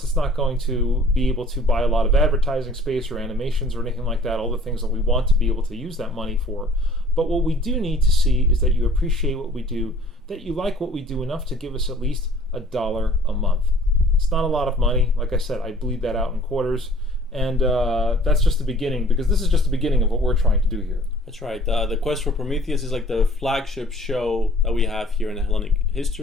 it's not going to be able to buy a lot of advertising space or animations or anything like that, all the things that we want to be able to use that money for. But what we do need to see is that you appreciate what we do, that you like what we do enough to give us at least $1 a month. It's not a lot of money. Like I said, I bleed that out in quarters. And that's just the beginning, because this is just the beginning of what we're trying to do here. That's right. The Quest for Prometheus is like the flagship show that we have here in the Hellenic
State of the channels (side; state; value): both; normal; correlation 0.52